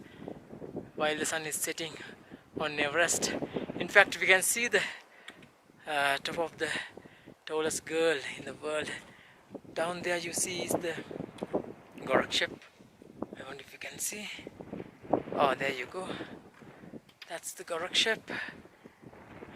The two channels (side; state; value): both; identical; correlation 1.00